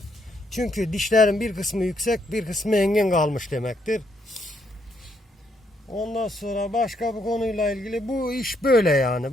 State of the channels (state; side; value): normal; both; correlation 0.74